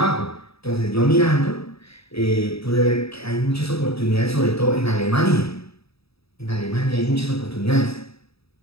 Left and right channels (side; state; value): right; late; 0.77 ms